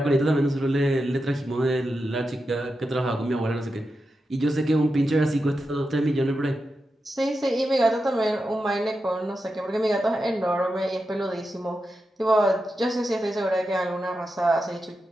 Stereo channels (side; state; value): both; normal; correlation 0.89